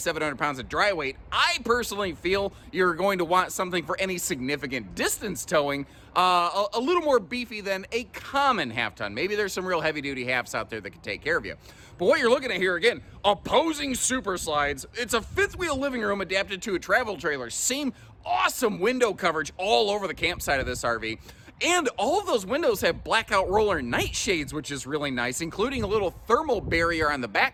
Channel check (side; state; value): both; identical; correlation 1.00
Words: pounds of dry weight, I personally feel you're going to want something for any significant distance towing a little more beefy than a common half ton. Maybe there's some real heavy duty halves out there that can take care of you. But what you're looking at here, again, opposing super slides. It's a fifth wheel living room adapted to a travel trailer. Same awesome window coverage all over the campsite of this RV. And all of those windows have blackout roller nightshades, which is really nice, including a little thermal barrier on the